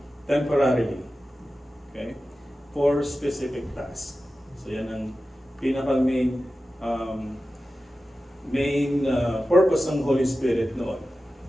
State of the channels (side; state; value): both; normal; correlation 0.94